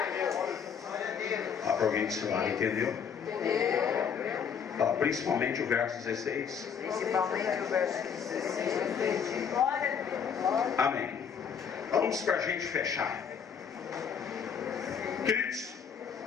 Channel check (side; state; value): right; quieter; 7.2 dB